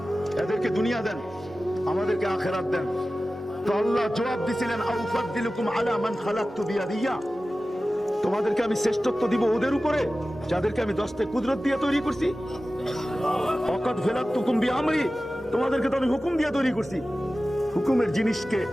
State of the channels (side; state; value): both; normal; correlation 0.95